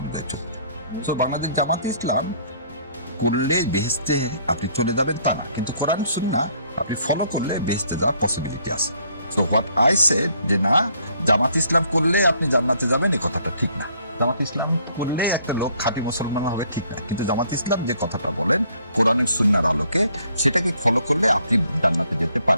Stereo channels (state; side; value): inverted; both; correlation -0.64